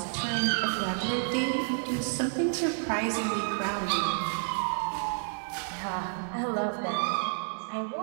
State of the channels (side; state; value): left; silent; digital silence